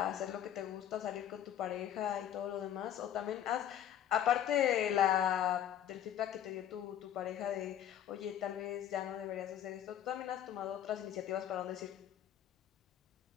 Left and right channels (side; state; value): right; quieter; 10.5 dB